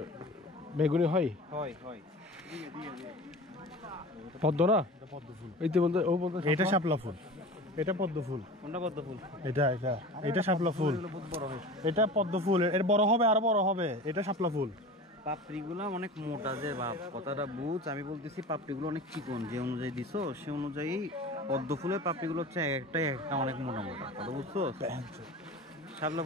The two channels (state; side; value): normal; both; correlation 0.35